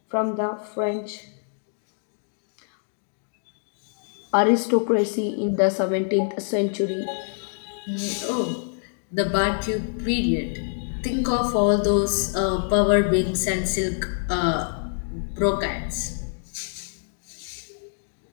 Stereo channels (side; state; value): right; silent; digital silence